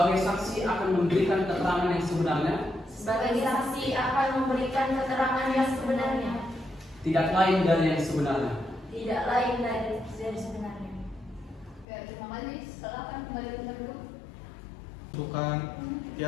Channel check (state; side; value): drops out; right; at 11.9 s